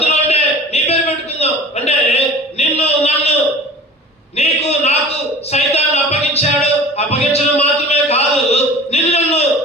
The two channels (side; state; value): both; normal; correlation 0.40